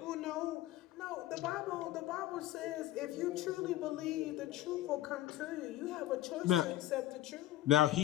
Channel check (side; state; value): right; quieter; 14.7 dB